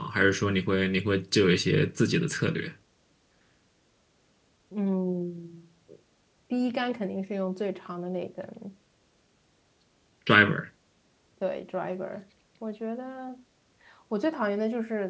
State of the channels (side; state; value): both; identical; correlation 1.00